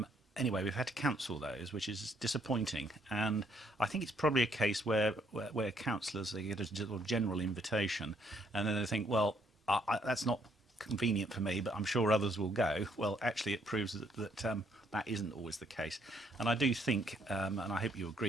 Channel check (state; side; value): normal; both; correlation 0.69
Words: Anyway, we've had to cancel those, which is disappointing. And I think it's probably a case where councillors, they get a general invitation, and then they think, well, that's not convenient for me, but I'm sure others will go. Well, actually, it proves that that isn't always the case. And I do think, and I hope you